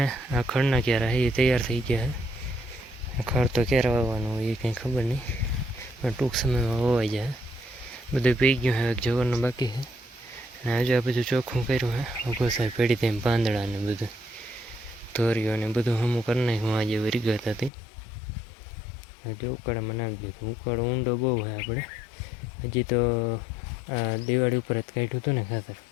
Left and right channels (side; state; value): right; drops out; at 17.7 s